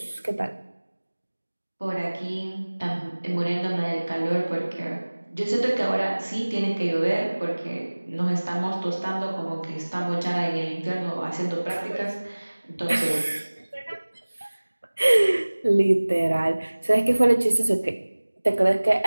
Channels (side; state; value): both; inverted; correlation -1.00